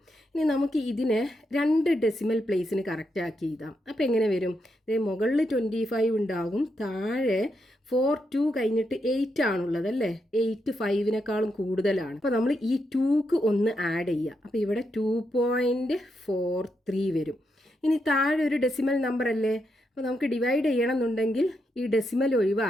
ഇനി നമുക്ക് ഇതിനെ രണ്ട് ഡെസിമൽ പ്ലേസിന് കറക്റ്റാക്കി എഴുതാം. അപ്പോൾ എങ്ങനെ വരും? മുകളിൽ 25 ഉണ്ടാകും, താഴെ 42 കഴിഞ്ഞിട്ട് 8 ആണുള്ളത് അല്ലേ? 8 5നേക്കാളും കൂടുതലാണ്. അപ്പോൾ നമ്മൾ ഈ 2ക്ക് ഒന്ന് ആഡ് ചെയ്യുക. അപ്പോൾ ഇവിടെ 2.43 വരും. ഇനി താഴെ ഒരു ഡെസിമൽ നമ്പർ അല്ലേ? അപ്പോൾ നമുക്ക് ഡിവൈഡ് ചെയ്യണം എന്നുണ്ടെങ്കിൽ ഈ ഡെസിമൽ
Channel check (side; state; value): both; normal; correlation 0.82